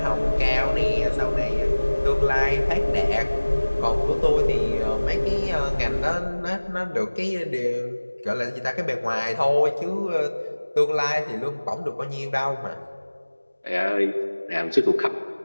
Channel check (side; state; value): both; inverted; correlation -1.00